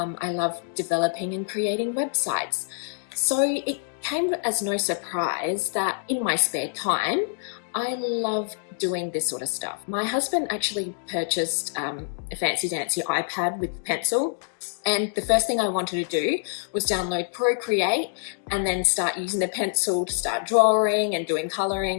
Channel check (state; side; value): silent; right; digital silence